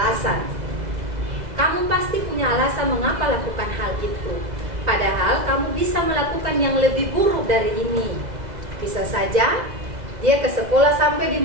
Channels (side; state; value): left; late; 2.0 ms